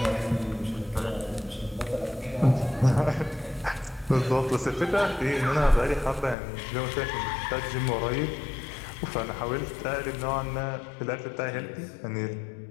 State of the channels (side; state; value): right; drops out; at 6.4 s